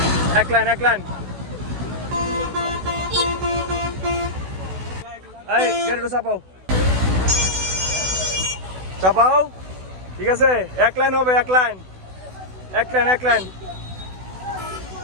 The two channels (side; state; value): left; late; 16 ms